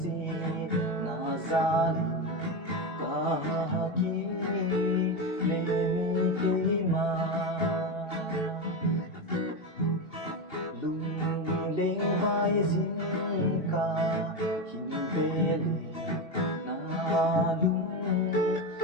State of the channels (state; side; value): late; right; 2.8 ms